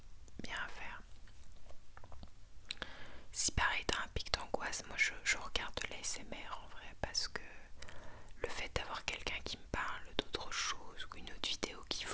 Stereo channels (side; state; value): both; identical; correlation 1.00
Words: ASMR en vrai, parce que le fait d'avoir quelqu'un qui me parle d'autre chose ou une autre vidéo qui